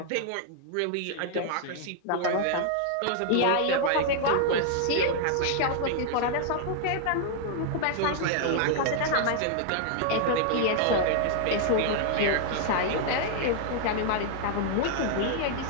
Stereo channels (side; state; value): both; different; correlation -0.01